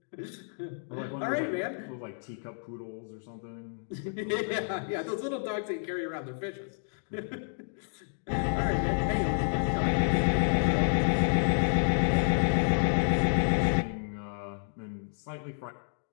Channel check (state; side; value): silent; right; digital silence